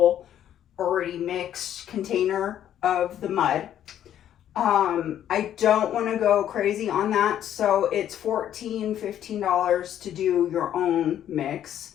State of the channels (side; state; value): right; quieter; 10.8 dB